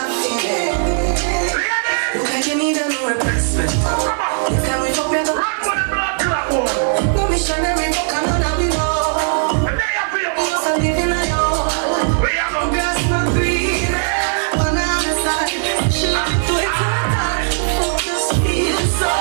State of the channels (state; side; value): silent; left; digital silence